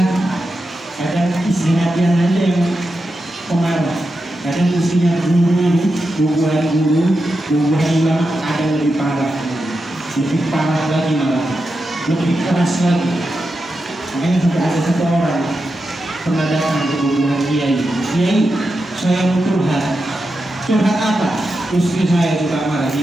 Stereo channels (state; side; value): normal; both; correlation 0.89